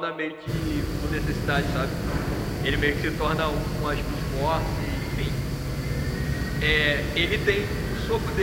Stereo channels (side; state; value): both; identical; correlation 1.00